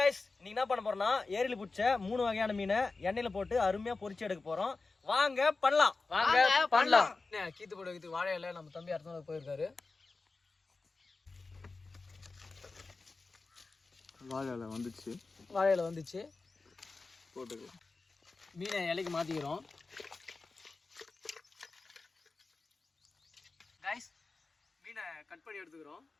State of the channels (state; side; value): quieter; right; 3.8 dB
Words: இன்னைக்கு என்ன பண்ண போறோம்னா ஏரியில் பிடிச்ச 3 வகையான மீனை எண்ணெயில் போட்டு அருமையாக பொரிச்சு எடுக்க போகிறோம். வாங்க பண்ணலாம். கீத்து போட வைக்கிறதுக்கு வாழை இலை நம்ம தம்பி அடுத்த போயிருக்காரு. வாழை இலை வந்துச்சு போட்டுக்கு மீனை இலைக்கு மாற்றிக்கிறோம். கைஸ், மீனை கட் பண்ணி எடுத்துக்கிறோம்.